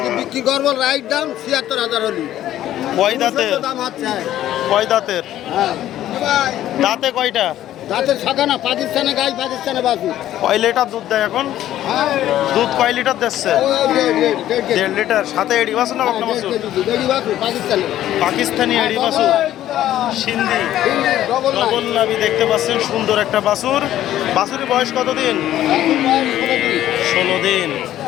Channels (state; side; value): quieter; right; 12.7 dB